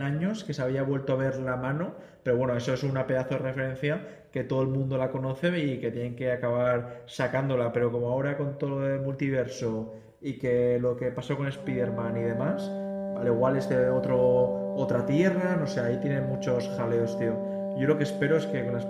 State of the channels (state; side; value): identical; both; correlation 1.00